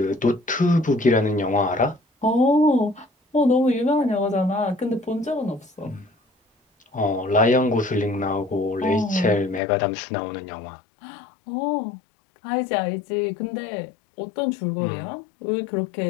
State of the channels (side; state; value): right; drops out; at 9.6 s